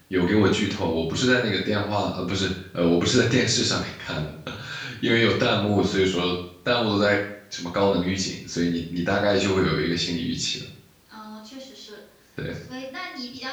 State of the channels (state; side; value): identical; both; correlation 1.00